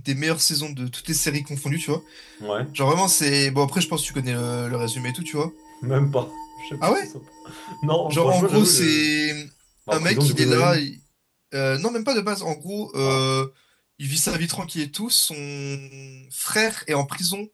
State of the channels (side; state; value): both; identical; correlation 1.00